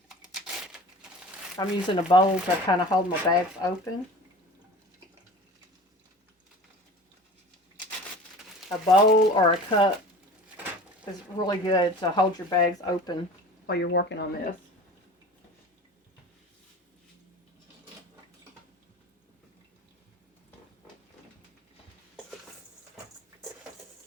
using a bowl to kind of hold my bags open. A bowl or a cup is really good to hold your bags open while you're working on this.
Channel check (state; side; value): normal; both; correlation 0.39